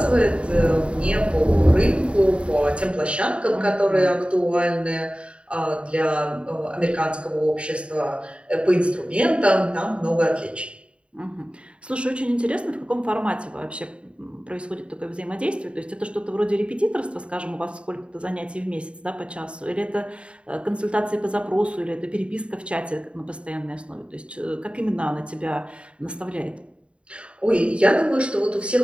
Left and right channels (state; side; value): late; left; 0.058 ms